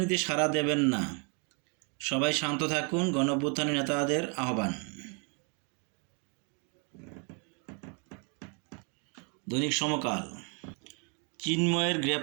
সাড়া দেবেন না, সবাই শান্ত থাকুন, গণঅভ্যুত্থানের নেতাদের আহ্বান। দৈনিক সমকাল: চিন্ময়ের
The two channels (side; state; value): left; quieter; 36.4 dB